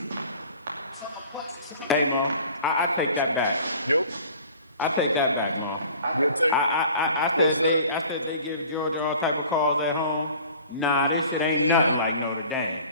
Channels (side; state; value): both; inverted; correlation -0.47